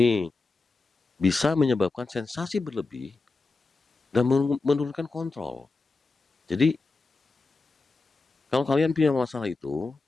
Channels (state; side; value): quieter; right; 3.8 dB